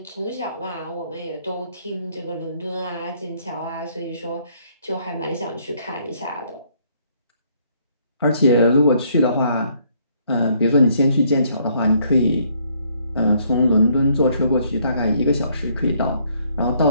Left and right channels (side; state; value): both; inverted; correlation -0.67